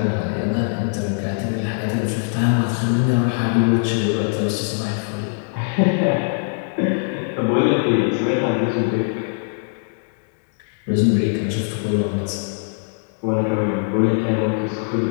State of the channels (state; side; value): silent; right; 65 dB below the other